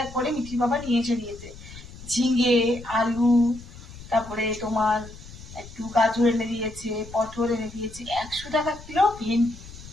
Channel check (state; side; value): noise; left; rumble, 16 dB below the sound